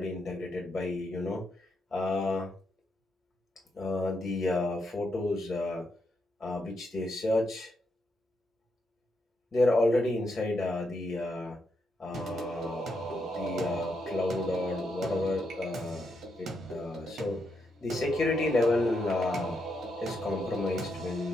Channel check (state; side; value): normal; both; correlation 0.81